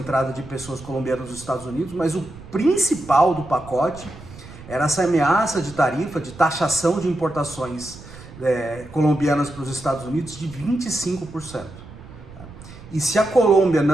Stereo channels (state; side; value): noise; right; rumble, 18 dB below the sound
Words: de pessoas colombianas nos Estados Unidos, mas o principal do pacote era essa ameaça de tarifa, de taxação de importações colombianas para os Estados Unidos de 25%. E se a Colômbia